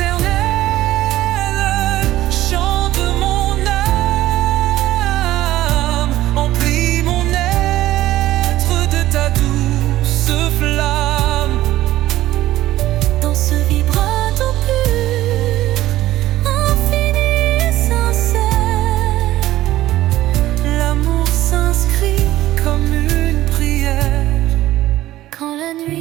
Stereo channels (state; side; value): quieter; left; 15.1 dB